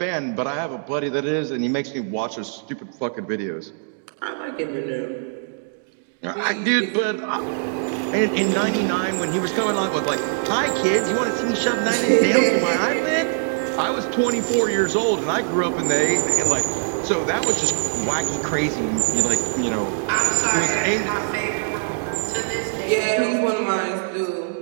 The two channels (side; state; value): left; silent; digital silence